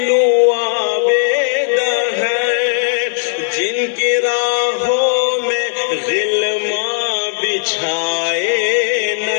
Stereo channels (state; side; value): silent; right; digital silence